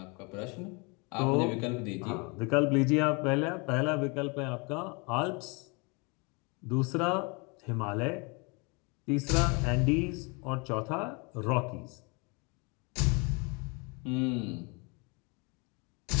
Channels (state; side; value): quieter; right; 30.7 dB